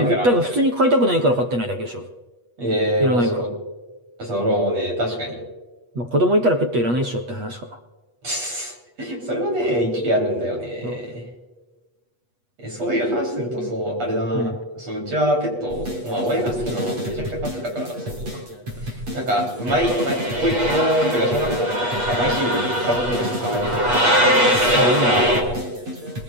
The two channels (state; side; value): late; left; 8.3 ms